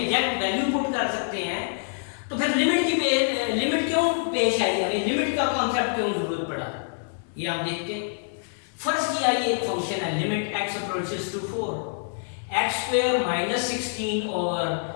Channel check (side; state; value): right; silent; digital silence